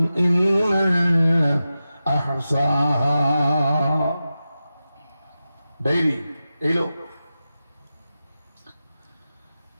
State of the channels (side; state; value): both; inverted; correlation -0.93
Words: ইল্লা আহসাহা। ডায়েরি এইলো